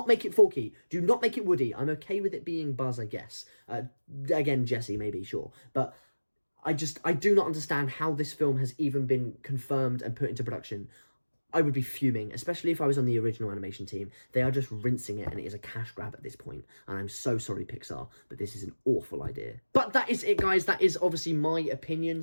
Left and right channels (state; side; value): inverted; both; correlation -1.00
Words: make it Forky. Do not make it Woody. I'm okay with it being Buzz, I guess. Again, Jesse, maybe, sure. But I do not understand how this film has even been confirmed and put into production. I would be fuming, especially if I was on the original animation team. They are just rinsing it, and it is a cash grab at this point. And I'm so sorry, Pixar, but this is an awful idea. But that is it, guys. That is obviously my opinion,